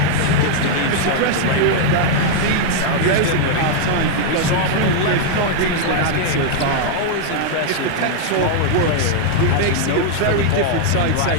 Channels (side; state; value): both; different; correlation 0.00